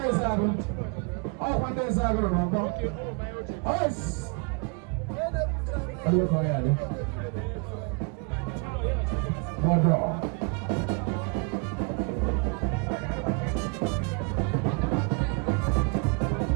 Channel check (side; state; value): left; quieter; 32.6 dB